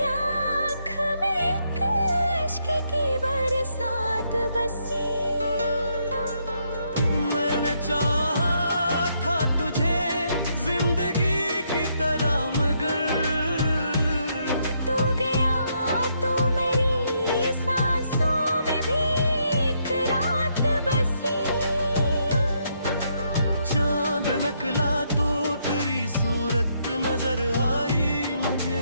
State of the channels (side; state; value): both; inverted; correlation -0.75